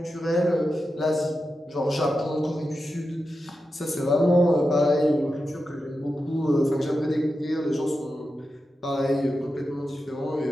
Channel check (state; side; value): normal; both; correlation 0.90